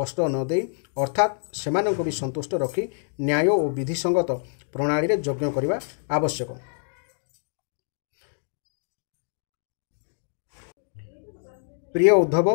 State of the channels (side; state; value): right; silent; digital silence